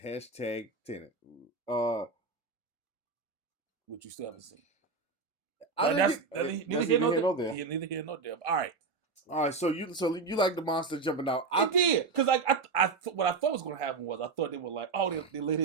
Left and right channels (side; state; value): left; quieter; 4.5 dB